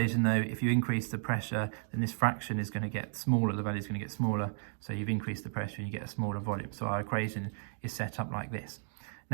though, if you increase the pressure, then this fraction is going to get smaller, the value is going to get smaller, so you've increased the pressure and you get a smaller volume. So our equation is set up like this.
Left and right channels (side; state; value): left; silent; digital silence